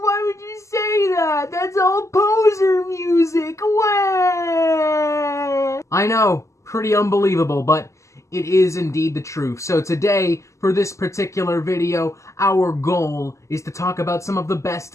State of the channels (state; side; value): late; right; 0.15 ms